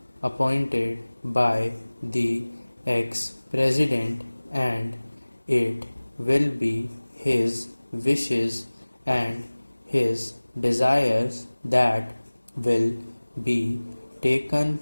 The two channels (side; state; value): both; inverted; correlation -1.00